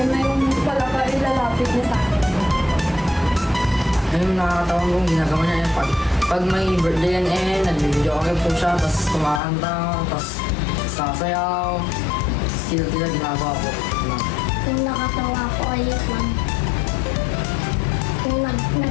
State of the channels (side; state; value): right; drops out; at 9.4 s